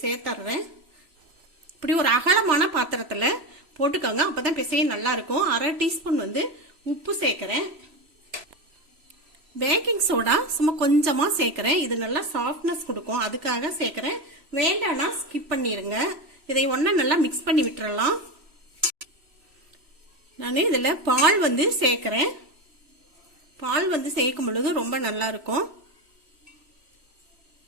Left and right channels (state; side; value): late; left; 3.0 ms